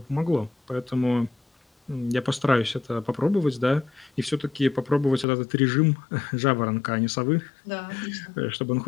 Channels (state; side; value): drops out; right; at 5.2 s